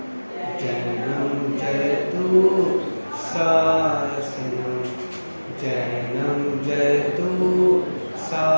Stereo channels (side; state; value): both; inverted; correlation -1.00